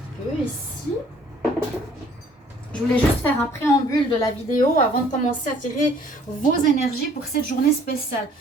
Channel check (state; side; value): normal; both; correlation 0.57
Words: peu ici. Je voulais juste faire un préambule de la vidéo avant de commencer à tirer vos énergies pour cette journée spéciale.